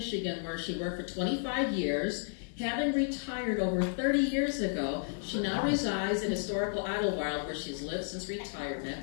where she worked for 25 years. Having retired over 30 years ago, she now resides in historical Idlewild, where she's lived since retirement.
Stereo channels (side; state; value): right; silent; 56 dB below the other